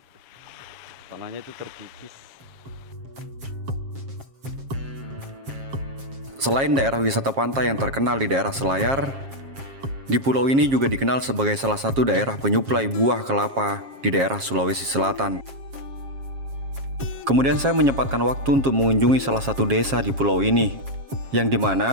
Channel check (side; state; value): left; late; 7.4 ms